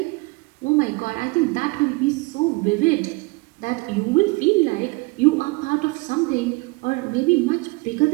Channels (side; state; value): left; quieter; 26.0 dB